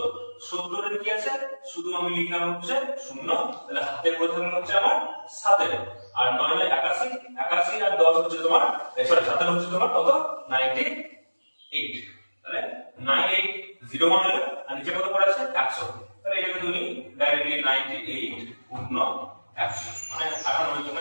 70 এর কি আছে, শুধু আমি লিখলাম হচ্ছে 0, তাহলে হাতে পড়ে থাকলো হচ্ছে আমার 7। আর 981 81 আর 10 হচ্ছে তোমার সরি 7 হচ্ছে তোমার কত 98। তাহলে 9801 হলো, আর নিচে কত পড়ে আছে 100। তাহলে এটাকে তুমি ডাইরেক্টলি 98 পূর্ণ 100 মানে 98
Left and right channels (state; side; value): inverted; both; correlation -1.00